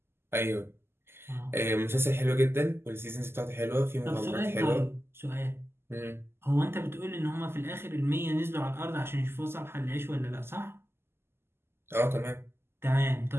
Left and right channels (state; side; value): late; left; 0.12 ms